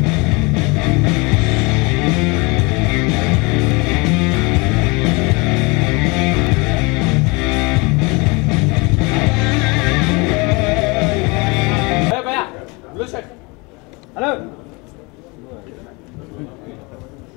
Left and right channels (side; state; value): right; quieter; 27.4 dB